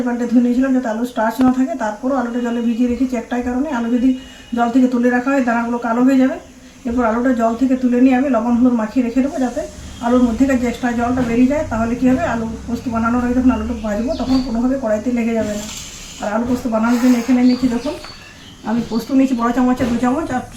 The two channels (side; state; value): both; identical; correlation 1.00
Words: পাল্টে ধুয়ে নিয়েছিলাম যাতে আলু স্টার্চ না থাকে। তারপরও আলুটা জলে ভিজিয়ে রেখেছি একটাই কারণে, আলু যদি জল থেকে তুলে রাখা হয় দানাগুলো কালো হয়ে যাবে। এরপর আলুটা জল থেকে তুলে নিয়ে আমি লবণ হলুদ মাখিয়ে রেখে দেবো যাতে আলুর মধ্যেকার যে এক্সট্রা জলটা বেরিয়ে যায়। তাহলে কী হবে, আলু পোস্ত বানানোর আগে যখন আলুটা ভাজবো তখন কোনোভাবে কড়াইতে লেগে যাবে না। আর আলু পোস্ত বানানোর জন্য এখানে নিয়েছি দেখুন, আমি পোস্ত নিয়েছি বড় চামচে 2 চামচ, আর